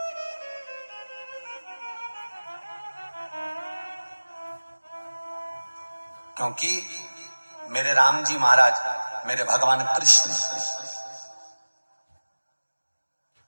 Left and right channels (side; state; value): both; inverted; correlation -1.00